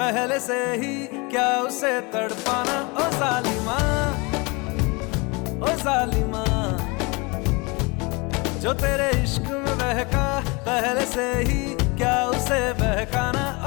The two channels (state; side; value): quieter; right; 27.6 dB